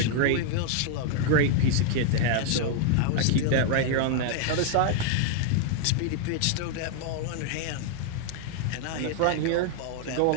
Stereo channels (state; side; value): different; both; correlation 0.00